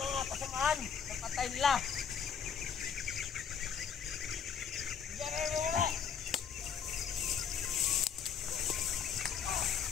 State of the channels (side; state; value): right; quieter; 7.2 dB